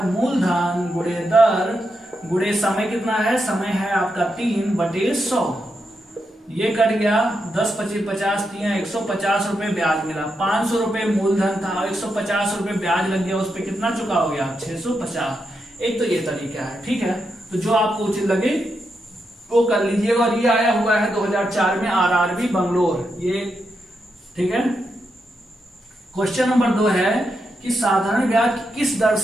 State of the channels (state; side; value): normal; both; correlation 0.84